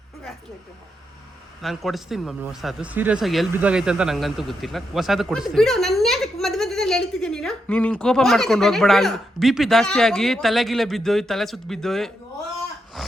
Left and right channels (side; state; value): both; normal; correlation 0.83